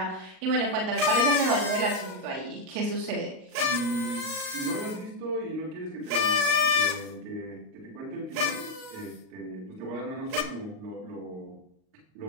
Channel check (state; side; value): late; left; 38 ms